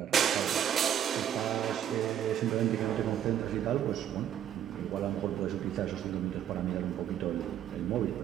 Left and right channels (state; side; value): quieter; left; 10.2 dB